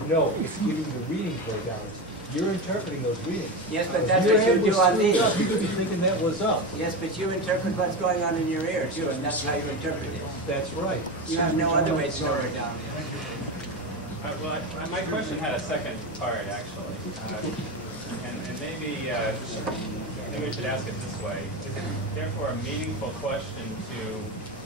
No, it's giving you the readings where down is. You're interpreting those readings. Yes, but that's what you do on these. You could be thinking that was up. Yes, but you interpret what's going on in your ear, too, and that's how you interpret it. That's right. You have no other way to know where down is. Well, my question had a second part, actually. And maybe we should ask it this way. Is it therefore a meaningful question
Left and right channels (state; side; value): normal; both; correlation 0.20